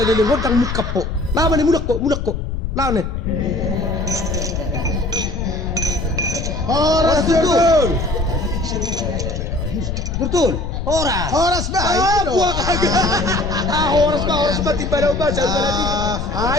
lilingod ang mukap po. Laban ni mulak ko. Lawan eh. Horas betul. Betul. Horas. Horas ba? Buwak agad. Horas ba? Timbalaw ba? Saan ba natin?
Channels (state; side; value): noise; left; rumble, 4 dB below the sound